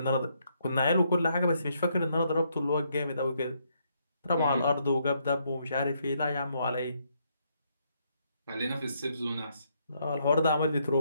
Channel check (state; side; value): inverted; both; correlation -0.74